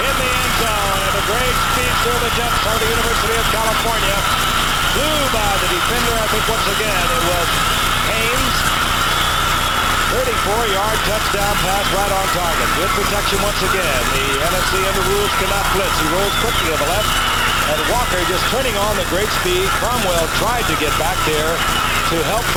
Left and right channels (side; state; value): both; identical; correlation 1.00